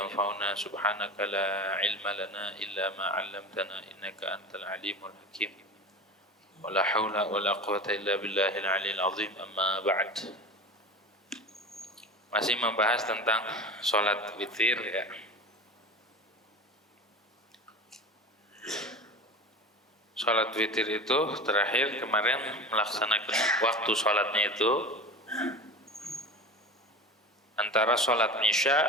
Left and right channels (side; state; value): both; normal; correlation 0.32